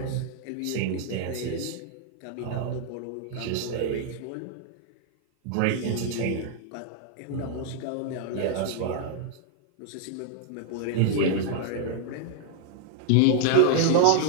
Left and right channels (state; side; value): different; both; correlation -0.01